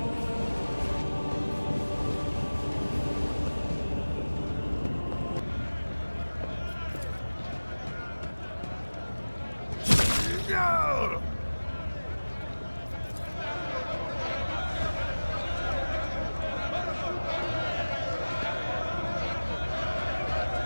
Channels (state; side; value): inverted; both; correlation -1.00